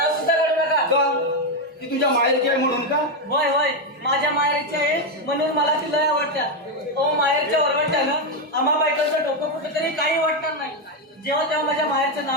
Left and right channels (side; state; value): both; normal; correlation 0.05